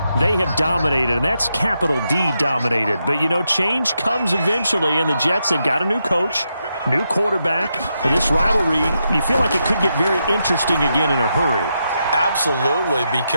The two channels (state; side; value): inverted; both; correlation -0.84